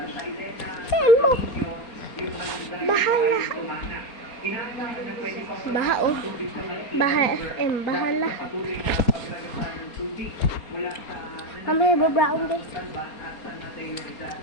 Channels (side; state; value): right; late; 4.3 ms